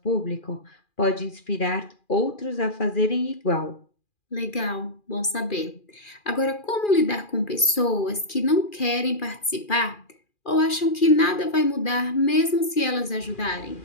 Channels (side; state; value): right; late; 2.4 ms